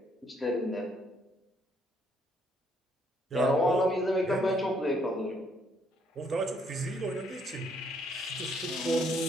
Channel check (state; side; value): normal; both; correlation 0.69